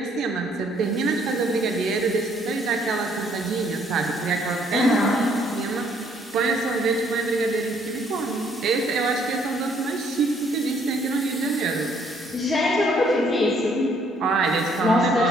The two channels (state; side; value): normal; both; correlation 0.65